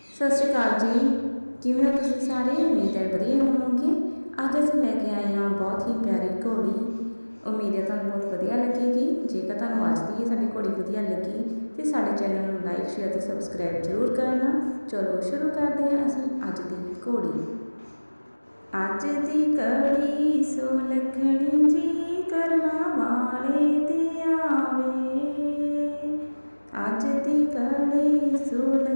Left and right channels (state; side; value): inverted; both; correlation -1.00